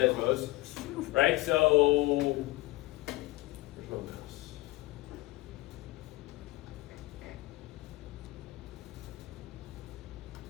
Right? So, where's my mouse?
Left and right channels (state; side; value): quieter; right; 19.7 dB